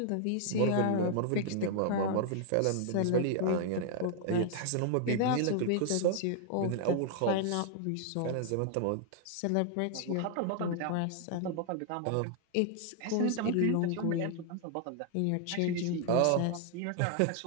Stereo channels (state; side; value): different; both; correlation 0.00